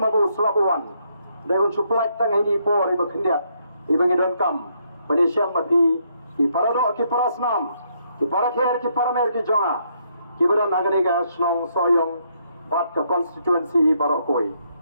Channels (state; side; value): inverted; both; correlation -0.73